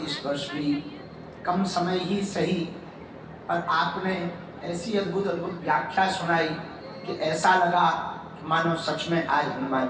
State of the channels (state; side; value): identical; both; correlation 1.00